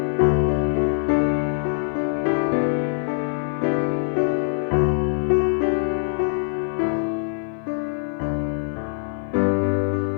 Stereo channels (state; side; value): silent; right; 55 dB below the other